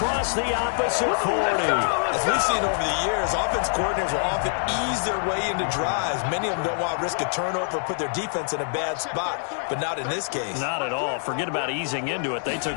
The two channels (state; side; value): silent; right; digital silence